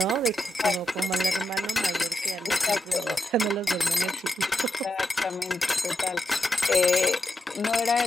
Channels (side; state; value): both; normal; correlation 0.86